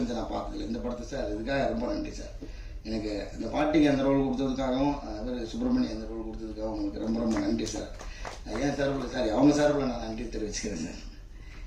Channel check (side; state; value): both; identical; correlation 1.00